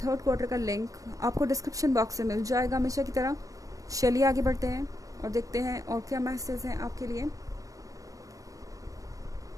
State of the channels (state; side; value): late; left; 0.16 ms